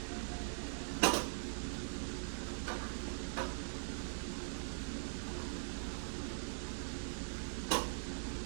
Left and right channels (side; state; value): left; silent; digital silence